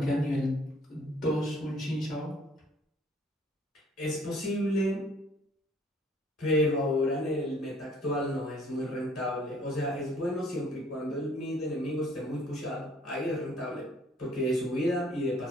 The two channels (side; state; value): both; normal; correlation 0.58